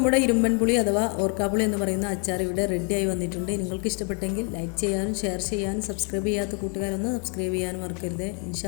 ഇരുമ്പൻ പുളി അഥവാ ഓർക്കാപ്പുളി എന്ന് പറയുന്ന അച്ചാർ ഇവിടെ റെഡിയായി വന്നിട്ടുണ്ട്. നിങ്ങൾക്ക് ഇഷ്ടപ്പെട്ടെങ്കിൽ ലൈക്ക് ചെയ്യാനും ഷെയർ ചെയ്യാനും സബ്സ്ക്രൈബ് ചെയ്യാത്ത കൂട്ടുകാരൊന്ന് സബ്സ്ക്രൈബ് ചെയ്യാനും മറക്കരുത്.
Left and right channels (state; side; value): quieter; right; 37.5 dB